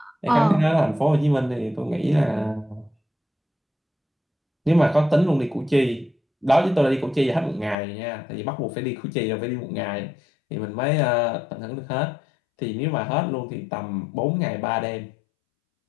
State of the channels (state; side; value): drops out; right; at 7.8 s